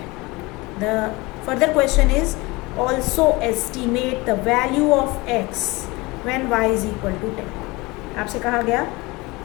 the further question is also estimate the value of x when y is equal to 10। आपसे कहा गया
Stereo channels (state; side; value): quieter; right; 23.3 dB